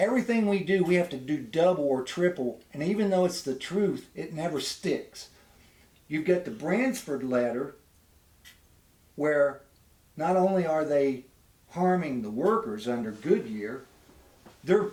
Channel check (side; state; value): both; identical; correlation 1.00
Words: we do, we have to do double or triple. And even though it's the truth, it never sticks. You've got the Bransford letter, where not only are they harming the workers under Goodyear, they're